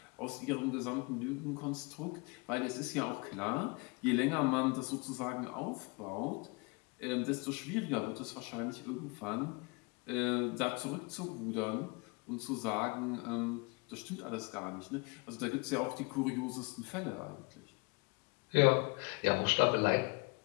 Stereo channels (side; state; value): right; quieter; 28.7 dB